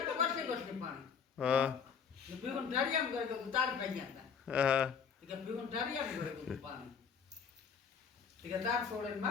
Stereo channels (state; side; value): quieter; right; 6.6 dB